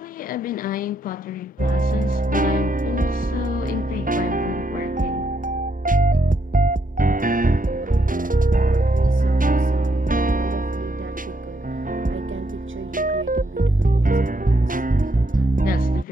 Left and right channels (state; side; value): normal; both; correlation 0.76